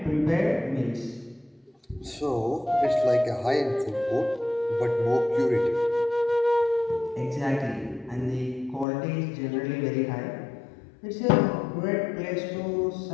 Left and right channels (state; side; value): drops out; right; at 8.8 s